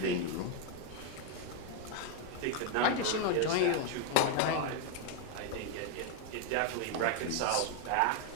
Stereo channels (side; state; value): both; different; correlation 0.01